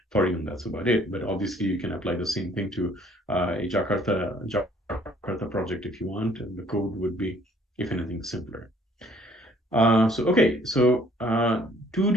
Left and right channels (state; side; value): normal; both; correlation 0.59